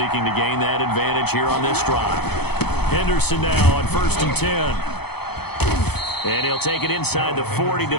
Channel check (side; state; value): right; late; 0.97 ms